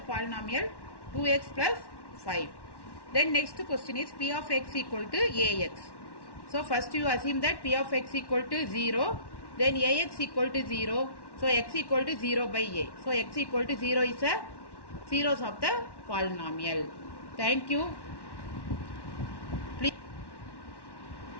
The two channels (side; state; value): right; late; 1.1 ms